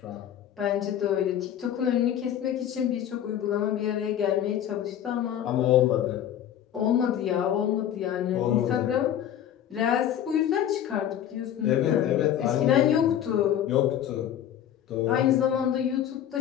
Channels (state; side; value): quieter; right; 10.5 dB